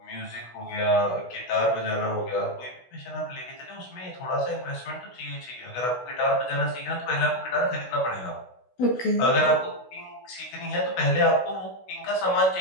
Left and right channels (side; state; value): right; late; 16 ms